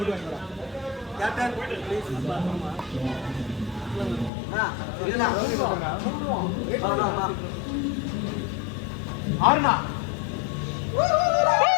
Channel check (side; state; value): right; drops out; at 4.3 s